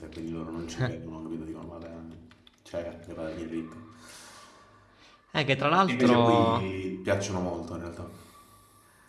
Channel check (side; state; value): both; identical; correlation 1.00